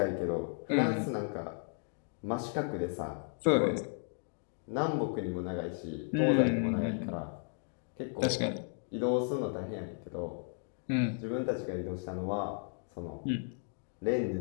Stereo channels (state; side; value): silent; right; 55 dB below the other